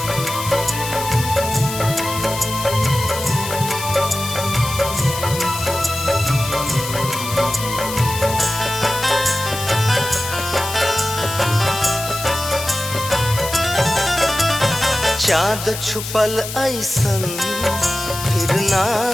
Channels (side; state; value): left; noise; hiss, 8 dB below the sound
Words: चाँद छुपल ऐसन फिर ना